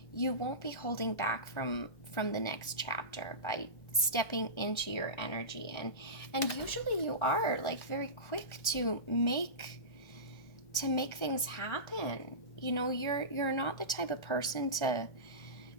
be holding back from the next chapter by stepping into your energy, and usually you are very quick to make things happen. You're not the type of person to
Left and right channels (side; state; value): right; late; 1.4 ms